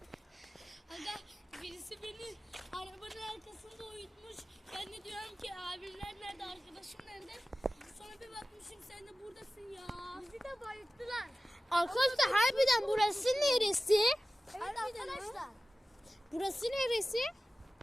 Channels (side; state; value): both; normal; correlation 0.96